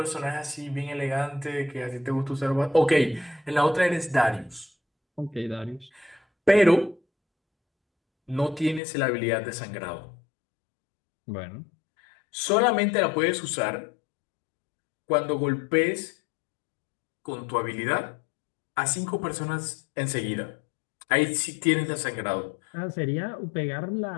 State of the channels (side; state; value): right; drops out; at 8.8 s